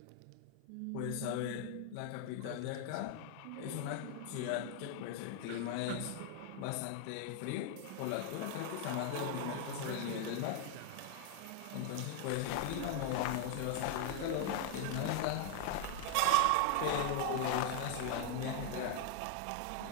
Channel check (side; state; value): both; different; correlation 0.00